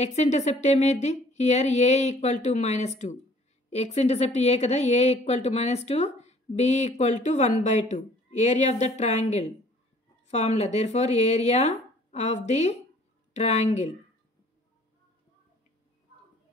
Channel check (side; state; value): both; normal; correlation 0.55